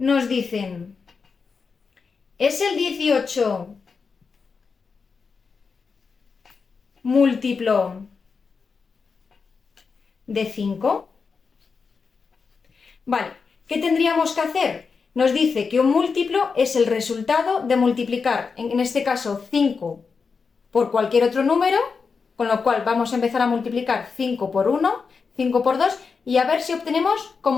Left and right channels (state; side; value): quieter; right; 5.2 dB